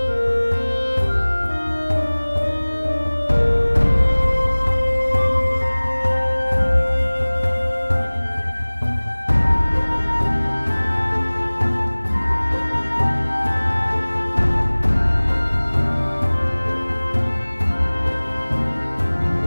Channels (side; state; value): both; inverted; correlation -1.00